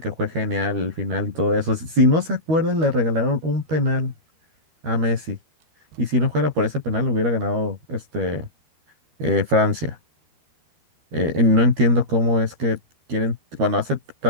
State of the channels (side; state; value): left; late; 13 ms